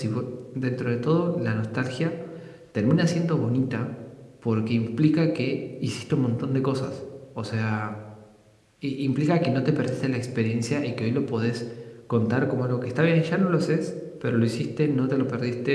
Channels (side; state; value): both; identical; correlation 1.00